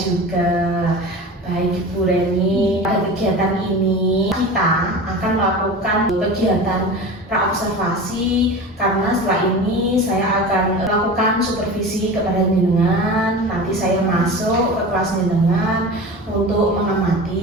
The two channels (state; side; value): normal; both; correlation 0.32